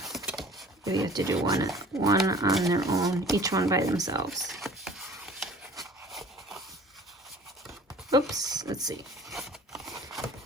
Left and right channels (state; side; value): normal; both; correlation 0.47